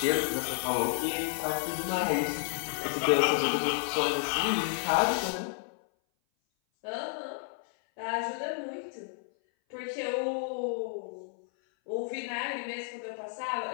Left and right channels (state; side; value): silent; right; 57 dB below the other